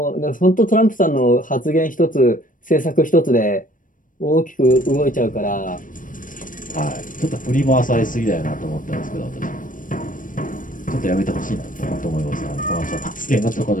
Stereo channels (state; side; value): late; right; 0.39 ms